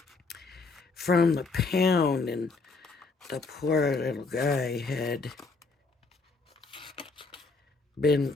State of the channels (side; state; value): right; quieter; 4.0 dB